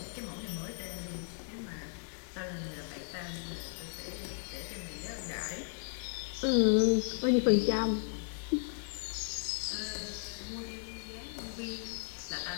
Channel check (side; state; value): right; silent; 54 dB below the other